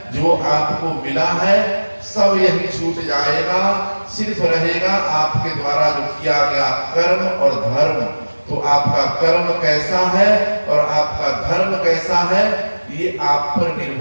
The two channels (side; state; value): both; inverted; correlation -1.00